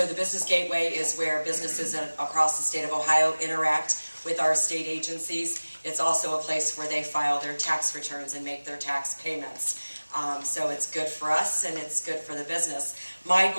the Business Gateway is where businesses across the state of Ohio interact with our state agencies. It's also a place where they file their tax returns and make their tax payments. So it's good for us and it's good for the business. My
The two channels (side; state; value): both; inverted; correlation -1.00